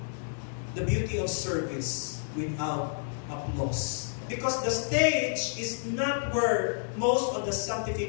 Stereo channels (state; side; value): silent; right; 58 dB below the other